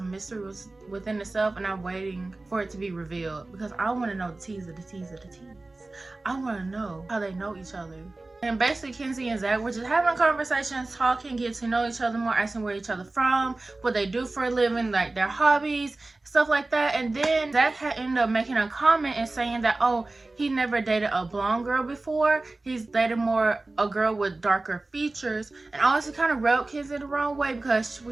I'm waiting for it to be revealed, because I want to know the tease of the tease of the tease. I want to know how they know each other. And basically, Kenzie and Zach were just having conversations, talking, getting to know each other more, asking where each other from, what they do for a living, like their hobbies, stuff like that. And then Zach had ended up making a comment and saying that, oh, he never dated a blonde girl before. He's dated more a girl with darker features. And honestly, kind of rubbed Kenzie the wrong way, because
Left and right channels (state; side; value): quieter; left; 3.1 dB